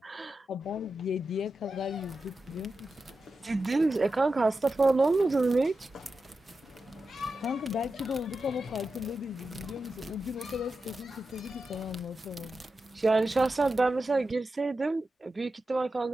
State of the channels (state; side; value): normal; both; correlation 0.91